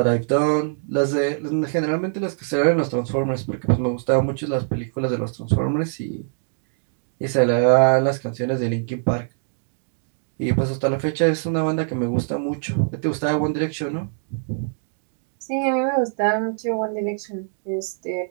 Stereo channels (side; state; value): left; silent; digital silence